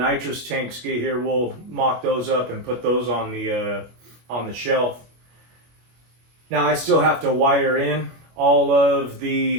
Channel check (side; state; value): left; late; 25 ms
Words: tanks get here, we'll mock those up and put those on the shelf. Now I still have to wire in all of